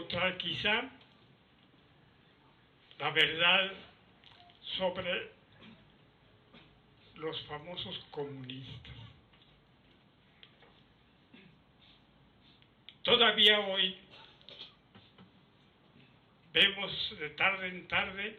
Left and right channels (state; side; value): identical; both; correlation 1.00